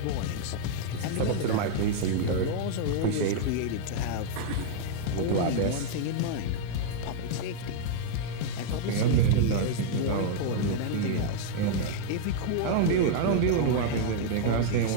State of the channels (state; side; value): different; both; correlation -0.01